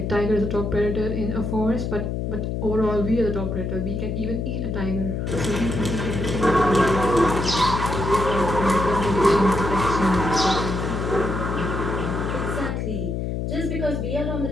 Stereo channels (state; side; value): noise; left; hum, 2 dB below the sound